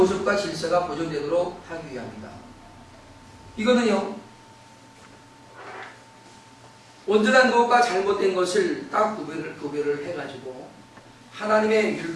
질서가 보존되도록 하기 위함이다. 이거는요, 온전한 것과 잘못된 것을 딱 구별을 해가지고 하나님의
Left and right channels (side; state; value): both; identical; correlation 1.00